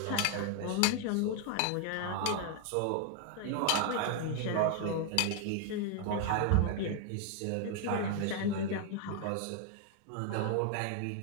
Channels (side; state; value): both; different; correlation 0.01